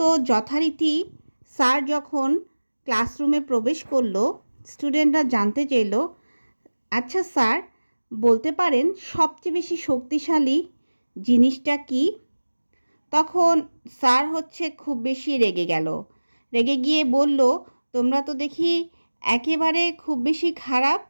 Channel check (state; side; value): inverted; both; correlation -1.00